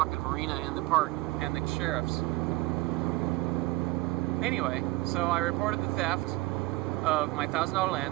marina and the park and the sheriffs. Anyway, so I reported the theft of my $1,000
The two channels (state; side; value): quieter; left; 20.1 dB